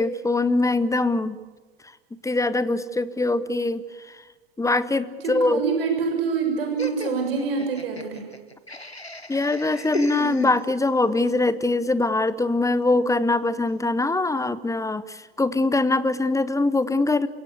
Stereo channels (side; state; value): both; normal; correlation 0.67